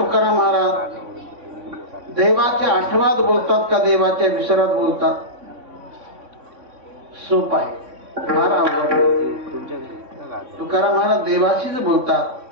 महाराज देवाच्या आठवणात बोलतात का देवाच्या विसरात बोलतात? सोप आहे, फार अवघड. तुकाराम महाराज देवाशीच बोलतात,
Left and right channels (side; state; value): left; late; 3.6 ms